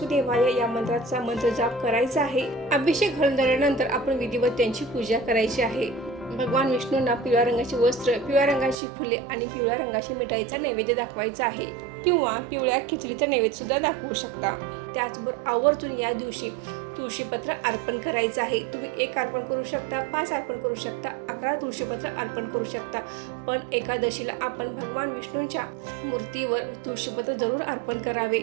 या मंत्राचा मंत्र जाप करायचा आहे. अभिषेक घालून झाल्यानंतर आपण विधिवत त्यांची पूजा करायची आहे. भगवान विष्णूंना पिवळ्या रंगाची वस्त्र, पिवळ्या रंगाची फुले आणि पिवळ्या रंगाच्या मिठाईचा नैवेद्य दाखवायचा आहे, किंवा पिवळ्या खिचडीचा नैवेद्य सुद्धा दाखवू शकता. त्याचबरोबर आवर्जून या दिवशी तुळशीपत्र अर्पण करायचं आहे. तुम्ही 1 अर्पण करू शकता, 5 अर्पण करू शकता, 11 तुळशीपत्र अर्पण करू शकता. पण एकादशीला आपण भगवान विष्णूंच्या मूर्तीवर तुळशीपत्र जरूर अर्पण करावे.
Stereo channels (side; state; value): left; drops out; at 8.8 s